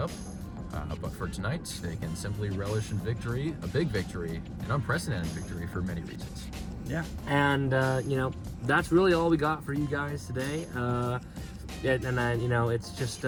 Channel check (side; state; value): both; identical; correlation 1.00